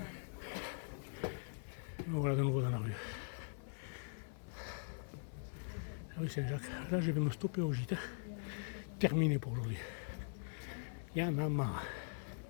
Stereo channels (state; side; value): silent; right; digital silence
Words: Voilà de nouveau dans la rue. La rue Saint-Jacques. Là je vais me stopper au gîte. Terminé pour aujourd'hui. Il y en a marre.